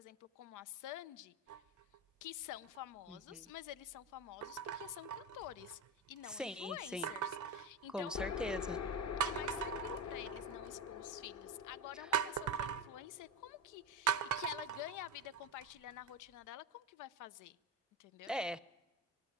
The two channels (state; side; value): normal; both; correlation 0.18